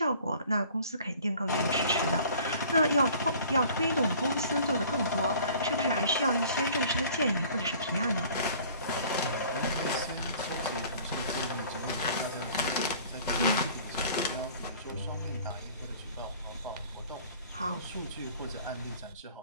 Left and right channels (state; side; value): inverted; both; correlation -0.50